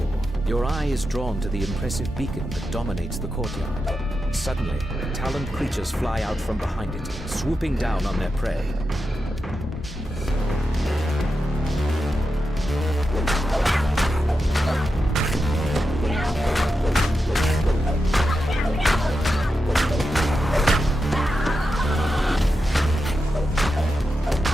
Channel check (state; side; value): normal; both; correlation 0.89